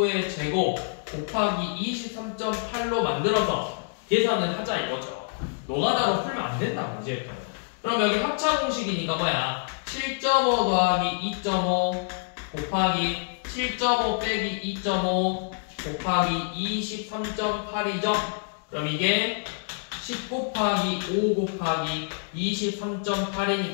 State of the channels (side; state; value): right; silent; digital silence